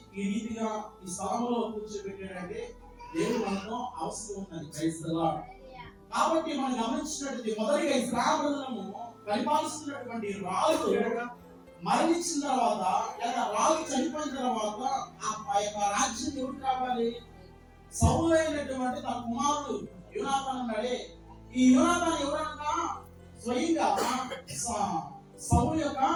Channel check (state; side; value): identical; both; correlation 1.00